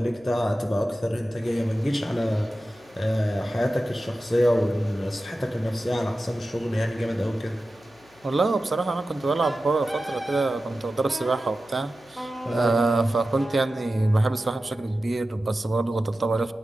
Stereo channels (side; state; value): left; noise; hum, 29 dB below the sound